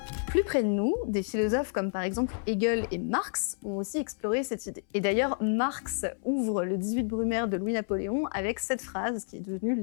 Plus près de nous, des philosophes comme par exemple Hegel et Marx ont aussi exploré cette idée. Et d'ailleurs, Marx ouvre le 18 Brumaire de Louis-Napoléon avec cette phrase qui est devenue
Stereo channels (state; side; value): silent; right; 58 dB below the other